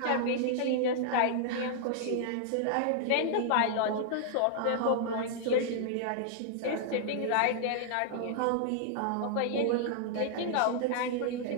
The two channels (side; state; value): both; different; correlation -0.01